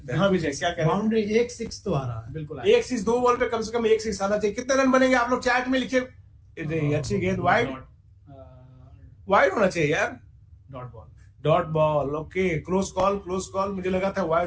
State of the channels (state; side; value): identical; both; correlation 1.00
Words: हैं। हाँ विजय, क्या कह रहे हैं? बाउंड्री 1-6 तो आ रहा है। बिल्कुल एक 6 2 बॉल पे कम से कम 1 6 आना चाहिए। कितने रन बनेंगे आप लोग चैट में लिखे। अच्छी गेंद, वाइड होना चाहिए यार। Dot ball, okay. Close call. मुझे लगा था